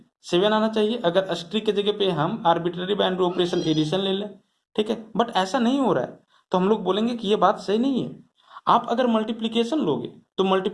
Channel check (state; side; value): identical; both; correlation 1.00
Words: 7 आना चाहिए, अगर स्ट्रिक के जगह पे हम आर्बिट्ररी बाइनरी ऑपरेशन एडिशन ले लें, ठीक है। बट ऐसा नहीं हो रहा है, तो हम लोग बोलेंगे कि ये बात सही नहीं है। आप अगर मल्टीप्लीकेशन लोगे तो